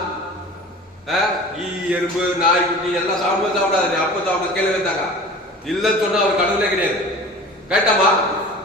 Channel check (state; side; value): normal; both; correlation 0.39